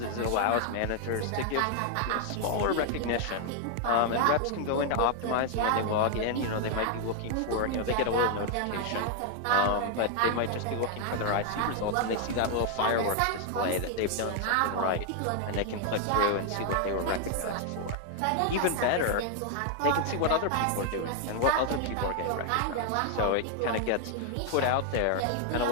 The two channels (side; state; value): both; different; correlation 0.00